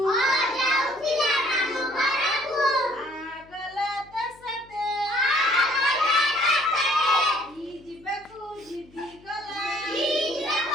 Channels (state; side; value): noise; left; hum, 27 dB below the sound